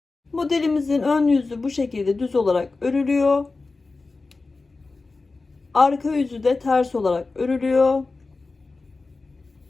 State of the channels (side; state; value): right; quieter; 3.7 dB